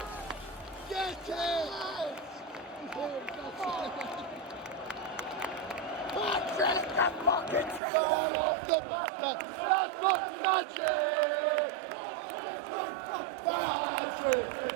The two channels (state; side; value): drops out; left; at 7.8 s